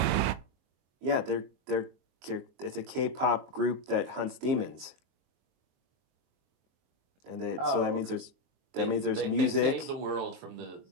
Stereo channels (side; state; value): left; late; 22 ms